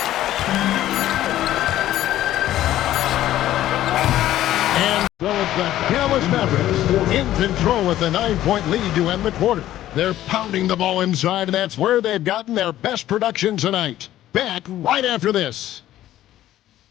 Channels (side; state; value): right; quieter; 13.4 dB